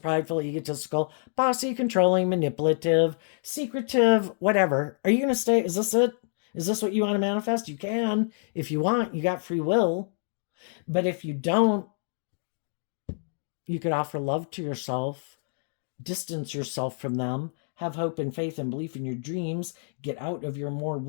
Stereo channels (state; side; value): silent; right; digital silence